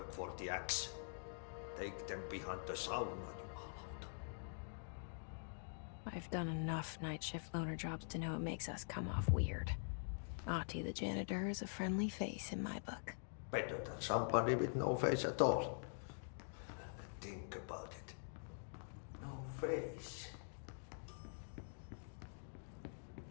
for the axe. Take them behind the sauna, jumalauta. I've done enough night shift loner jobs to know it makes us come off weird. Ahti the janitor is a friendly face in my book. Better than somebody with no face at all. Think about it. No face.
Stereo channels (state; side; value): silent; right; digital silence